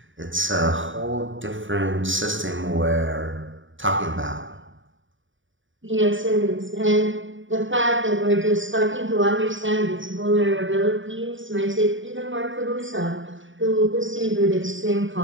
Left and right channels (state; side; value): late; left; 0.56 ms